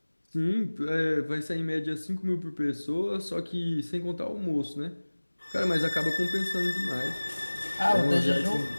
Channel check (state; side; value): inverted; both; correlation -1.00